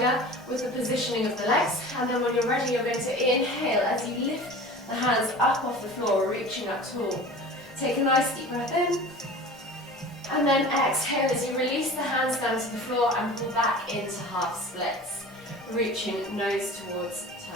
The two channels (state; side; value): normal; both; correlation 0.39